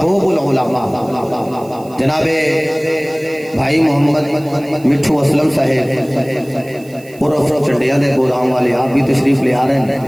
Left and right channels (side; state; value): right; noise; hiss, 24 dB below the sound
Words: العلماء جناب بھائی محمد مٹھو اسلم صاحب عرف چنڈیا دے گودام والے آپ بھی تشریف لے آ رہے ہیں.